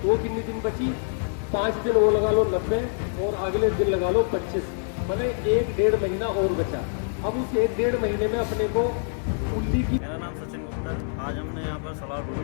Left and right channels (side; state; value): right; silent; digital silence